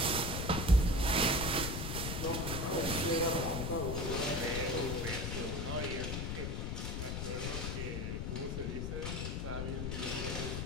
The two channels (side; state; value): left; noise; rumble, 2 dB below the sound